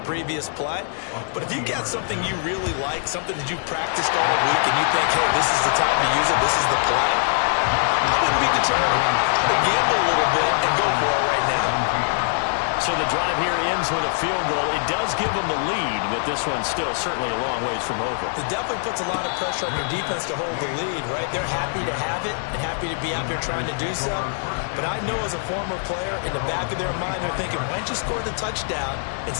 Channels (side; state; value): right; silent; digital silence